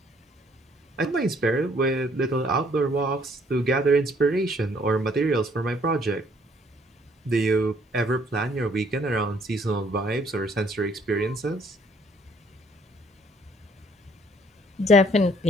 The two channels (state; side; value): normal; both; correlation 0.63